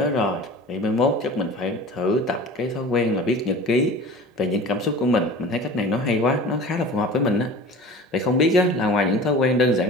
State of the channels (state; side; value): normal; both; correlation 0.39